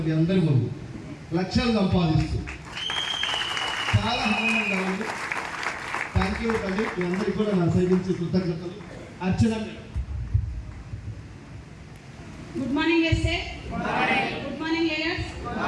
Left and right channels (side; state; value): both; identical; correlation 1.00